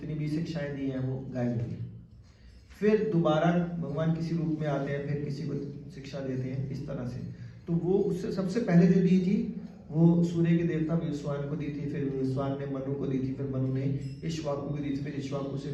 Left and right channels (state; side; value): identical; both; correlation 1.00